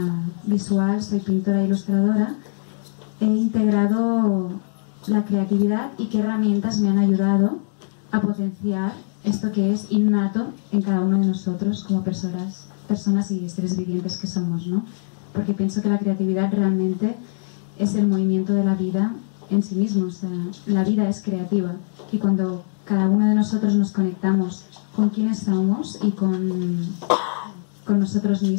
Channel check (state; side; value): silent; right; digital silence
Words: visual, soy pintora e ilustradora, he integrado la creatividad y qué herramientas me han ayudado a potenciar esto que es innato en cada uno de nosotros como personas y seres vivientes que somos, ¿no? Porque pienso que la creatividad realmente es el movimiento de la vida en sí mismo, o sea, la vida es creativa y cuando cada uno de nosotros nos conectamos con quienes somos y con nosotros